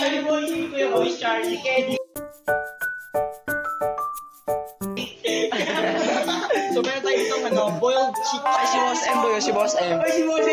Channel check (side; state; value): both; identical; correlation 1.00